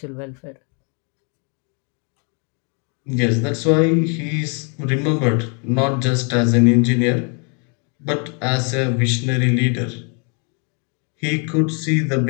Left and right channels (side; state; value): right; quieter; 37.8 dB